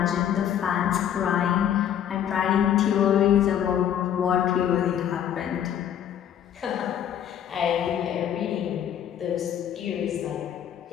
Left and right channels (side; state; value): right; quieter; 9.8 dB